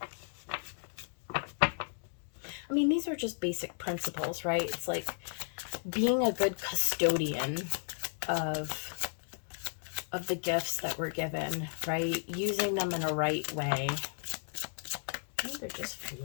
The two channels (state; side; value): silent; right; digital silence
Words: I mean, these are just basic principles, right? It's like being a good custodian of the gifts that we're given, right? Using them in a right way. Oh, they're just